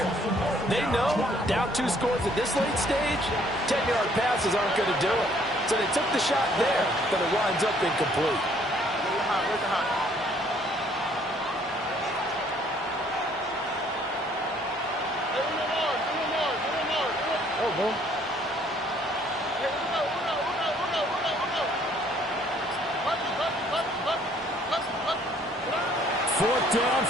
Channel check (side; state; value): both; normal; correlation 0.62